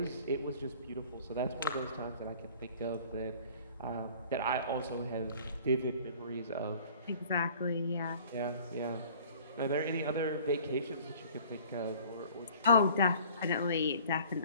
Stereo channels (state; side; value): inverted; both; correlation -0.50